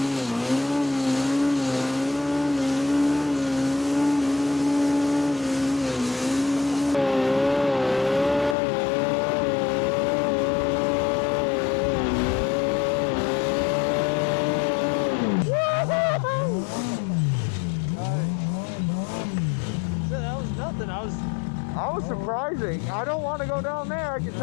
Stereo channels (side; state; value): right; drops out; at 8.6 s